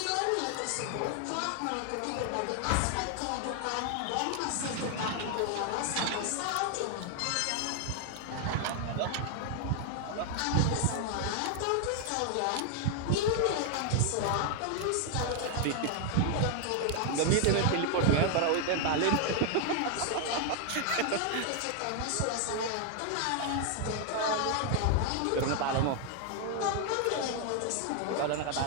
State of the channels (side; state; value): both; different; correlation 0.00